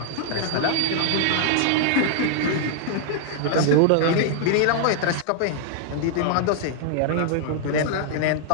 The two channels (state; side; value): different; both; correlation -0.01